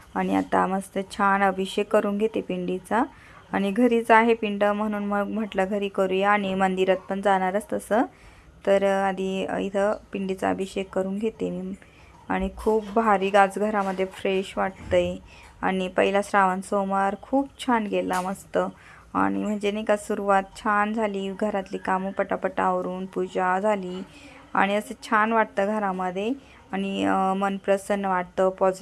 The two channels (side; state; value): both; identical; correlation 1.00